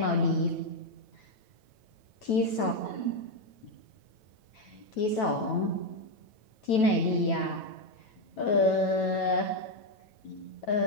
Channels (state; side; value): late; right; 9.2 ms